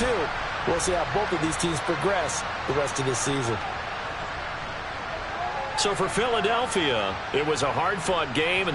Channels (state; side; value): identical; both; correlation 1.00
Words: We'll see how both of these teams progress the rest of this season. So for Philadelphia, it was a hard-fought game, and